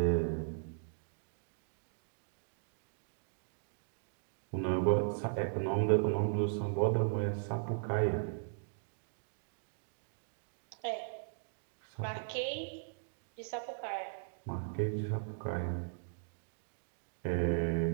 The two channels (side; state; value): left; silent; digital silence